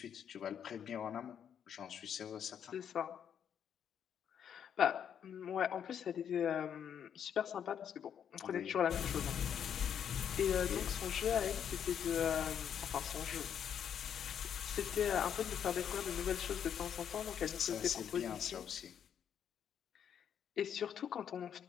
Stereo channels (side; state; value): right; quieter; 8.6 dB